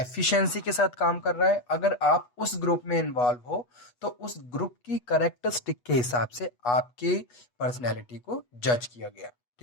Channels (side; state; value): right; late; 8.2 ms